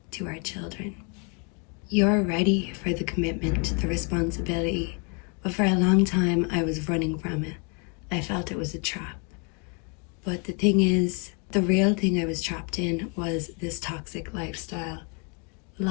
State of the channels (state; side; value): quieter; right; 35.5 dB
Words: to our children. You're ready for the commitment, the responsibility, but for a long time I was running from it. I felt it was a trap. But the thing is, the real thing I was trapped in was this toxic lifestyle,